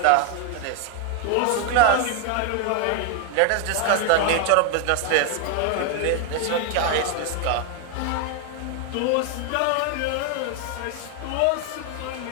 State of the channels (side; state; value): both; different; correlation 0.01